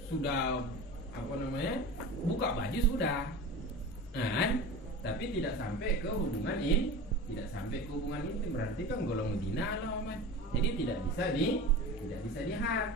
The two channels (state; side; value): normal; both; correlation 0.33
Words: sudah buka baju sudah, nah, tapi tidak sampai ke hubungan intim, berarti kan golong zina lah, jadi tidak bisa